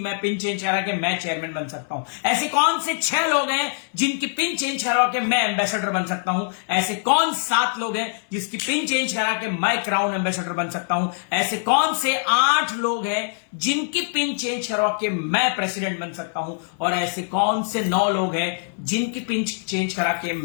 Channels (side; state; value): right; silent; 63 dB below the other